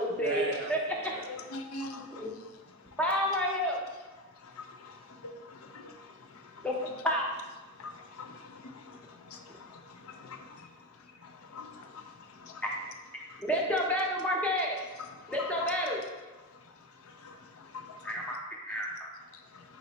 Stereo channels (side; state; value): both; normal; correlation 0.19